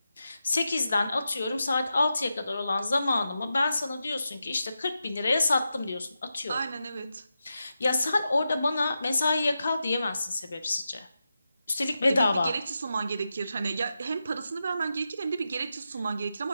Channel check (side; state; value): both; inverted; correlation -0.89